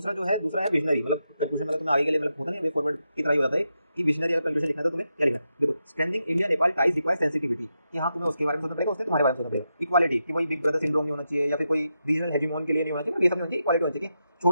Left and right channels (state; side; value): inverted; both; correlation -0.86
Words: जो है, दूसरा है विजनरी, मतलब कंक्लूजन, मतलब तुम्हें आगे के लिए मतलब होता नहीं वे फॉरवर्ड की तरह ही होता है कि विजनरी अगर कंक्लूजन लिखना है तो तुम्हें क्या लिखना है। देखो strengthening India Nepal ties requires sensitivity, कि हाँ तुम्हें उसके बारे में सोचना पड़ेगा, उससे तुम्हारे बारे में सोचना पड़ेगा। इक्वालिटी, कि वही बिग ब्रदर सिंड्रोम नहीं होना चाहिए या फिर कोई रीजनल हेजिमोन के लिए नहीं होना चाहिए, ये सब नहीं होना चाहिए। इक्वालिटी होनी चाहिए,